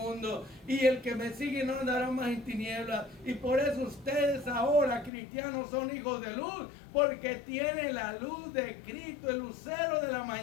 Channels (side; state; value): right; drops out; at 5.1 s